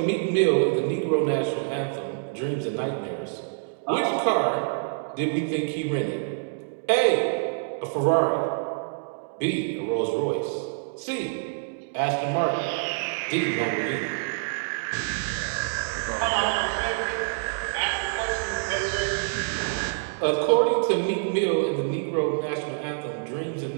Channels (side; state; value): left; silent; digital silence